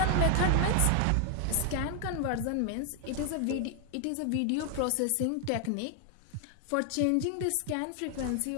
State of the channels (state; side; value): different; both; correlation 0.00